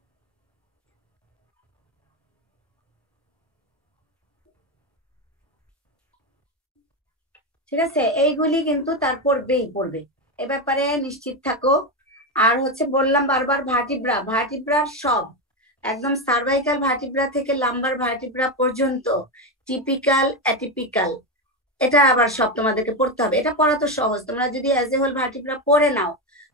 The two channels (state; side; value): normal; both; correlation 0.12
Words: ঠিক আছে। এইগুলি কিন্তু তার পড়বে, এ ব্যাপারে নিশ্চিত থাকো। আর হচ্ছে বললাম বারবার, ভার্টিব্রার সব একদম সার্ভাইকাল ভার্টিব্রা থেকে লাম্বার ভার্টিব্রা পর্যন্ত টিপিক্যাল, অ্যাটিপিক্যাল, এটা আবার সব তোমাদেরকে পড়তে হবে। এটা পড়া তো সহজ, তোমরা যদি অ্যাজ এ হোল ভার্টিব্রা পড়ে নাও,